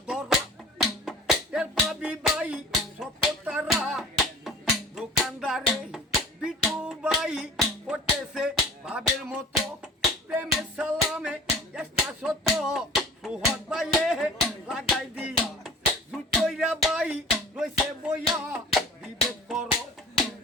ধরা এর পাবি ভাই সততারা, দোকানদারে বিটু ভাই করতেছে ভাবের মতো, প্রেমের সালামে একটা শত সুহদ ভাইয়ে লাগাই দিয়া, জুতইরা ভাই রইছে বইয়া, বিবেক করো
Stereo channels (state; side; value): normal; both; correlation 0.41